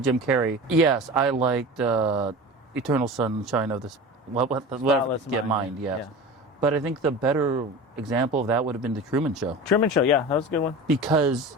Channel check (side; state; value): both; normal; correlation 0.33